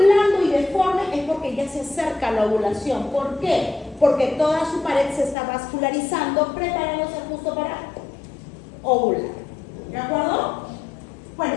y deforme es porque ya se acerca a la ovulación. ¿Por qué? Porque toda su pared se está vascularizando, preparándose justo para ovular. ¿De acuerdo? Bueno,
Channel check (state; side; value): drops out; right; at 5.4 s